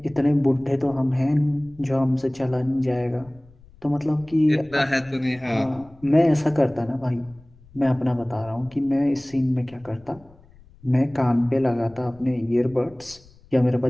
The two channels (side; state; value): left; noise; rumble, 25 dB below the sound